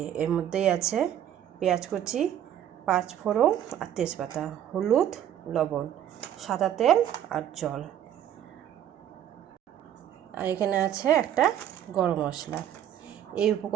এর মধ্যেই আছে পেঁয়াজ কুচি, 5 ফোড়ন আর তেজপাতা, হলুদ, লবণ, সাদা তেল আর জল। আর এখানে আছে একটা গরম মশলা। এই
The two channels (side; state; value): left; quieter; 10.6 dB